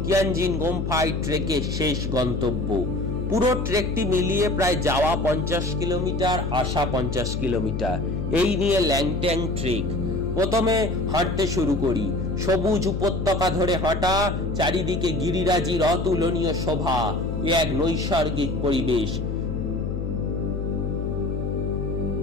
কিয়ানজিন গোম্ফায় ট্রেকের শেষ গন্তব্য। পুরো ট্রেকটি মিলিয়ে প্রায় যাওয়া 50 কিলোমিটার, আসা 50 কিলোমিটার। এই নিয়ে ল্যাংট্যাং ট্রেক। প্রথমে হাঁটতে শুরু করি। সবুজ উপত্যকা ধরে হাঁটা, চারিদিকে গিরিরাজির অতুলনীয় শোভা, এক নৈসর্গিক পরিবেশ।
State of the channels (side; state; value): left; noise; hum, 2 dB below the sound